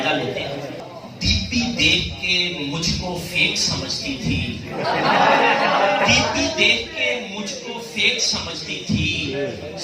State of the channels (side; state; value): both; identical; correlation 1.00